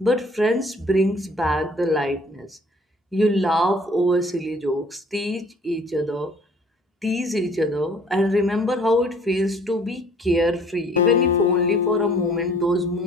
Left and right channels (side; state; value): both; normal; correlation 0.55